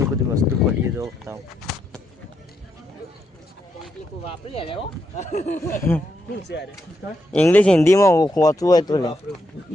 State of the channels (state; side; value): normal; both; correlation 0.80